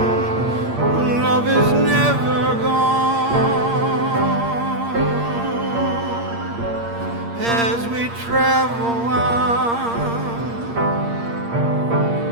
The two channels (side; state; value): left; late; 8.6 ms